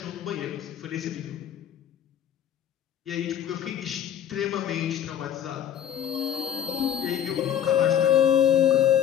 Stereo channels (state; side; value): quieter; right; 9.7 dB